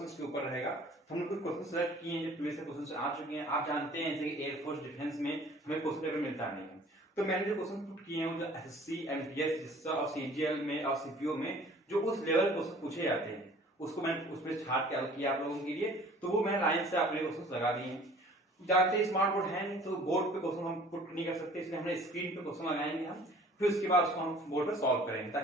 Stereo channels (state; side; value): normal; both; correlation 0.50